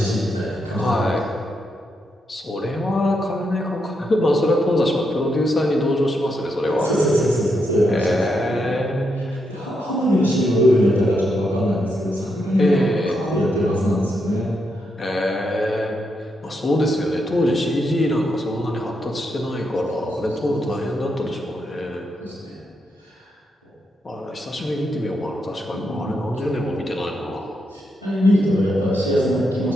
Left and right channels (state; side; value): normal; both; correlation 0.81